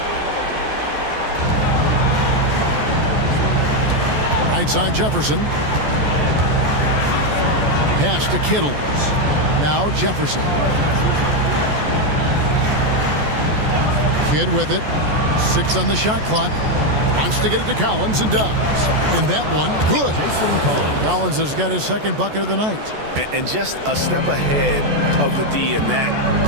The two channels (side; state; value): left; late; 14 ms